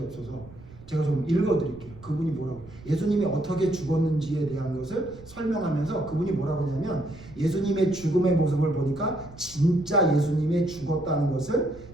없어서 제가 좀 읽어드릴게요. 그분이 뭐라고 예수님이 어떻게 죽었는지에 대한 것을 설명하면서 그분이 뭐라고 하냐면 예수님의 죽음의 모습을 보니까 진짜 예수님이 죽었다는 것을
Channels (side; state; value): right; noise; rumble, 19 dB below the sound